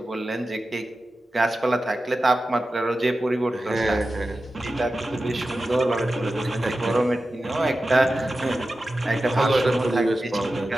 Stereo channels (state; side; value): normal; both; correlation 0.93